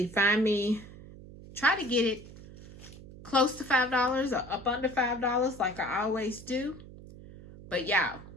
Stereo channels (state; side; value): noise; right; hum, 17 dB below the sound